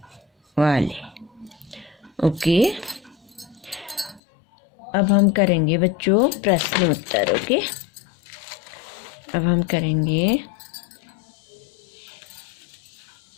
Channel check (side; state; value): right; drops out; at 4.2 s